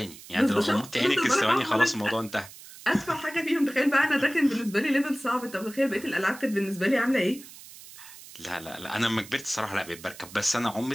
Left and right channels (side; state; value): right; noise; hiss, 17 dB below the sound